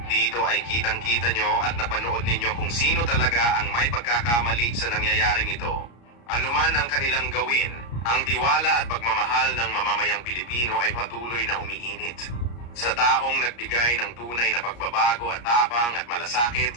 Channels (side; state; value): right; late; 34 ms